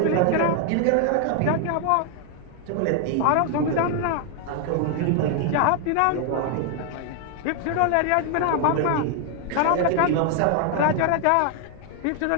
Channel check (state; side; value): different; both; correlation 0.00